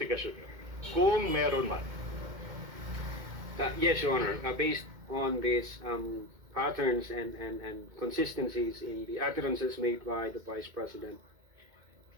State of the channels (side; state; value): left; late; 2.1 ms